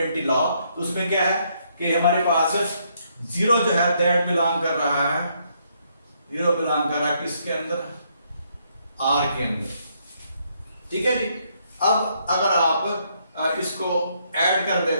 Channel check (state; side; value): inverted; both; correlation -0.72